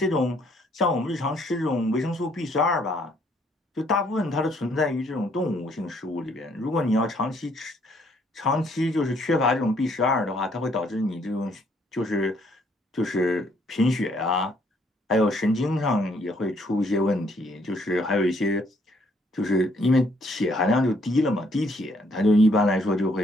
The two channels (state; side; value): normal; both; correlation 0.67